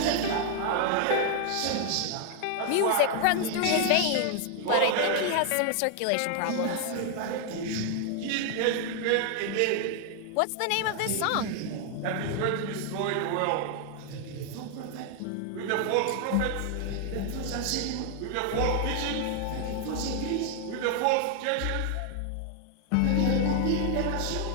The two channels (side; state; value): both; different; correlation 0.00